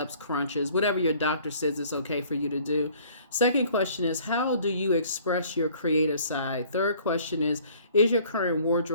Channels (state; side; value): inverted; both; correlation -0.56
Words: crunches, whatever your doctor says it's okay for you to do. Second question is, how do you express your creative side? Third question is your current